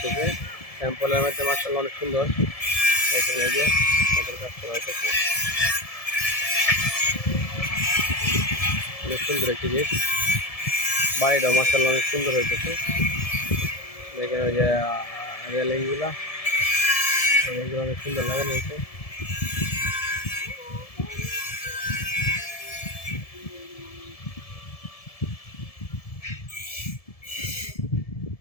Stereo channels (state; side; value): late; right; 1.7 ms